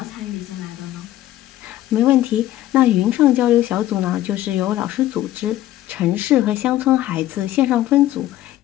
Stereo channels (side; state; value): right; quieter; 14.0 dB